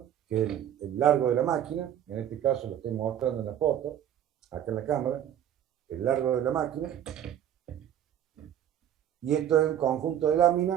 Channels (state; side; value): quieter; left; 10.4 dB